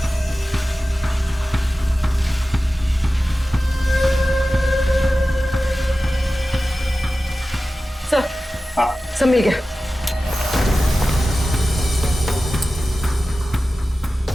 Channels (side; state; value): both; normal; correlation 0.95